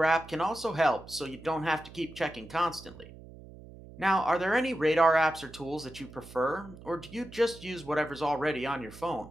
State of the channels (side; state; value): right; noise; hum, 18 dB below the sound